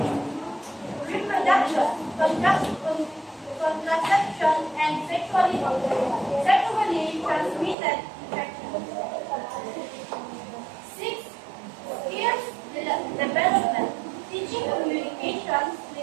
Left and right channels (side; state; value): left; drops out; at 7.8 s